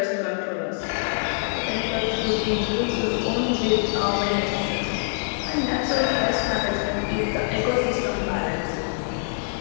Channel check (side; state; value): right; silent; digital silence